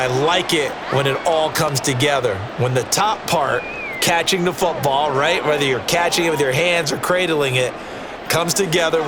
like it when it all comes together. When the top part, catching the football, right, whether you're catching it with your hands or cradling it, comes together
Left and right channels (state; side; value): identical; both; correlation 1.00